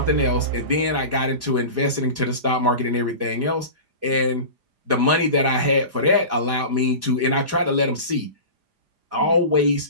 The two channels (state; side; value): late; left; 5.0 ms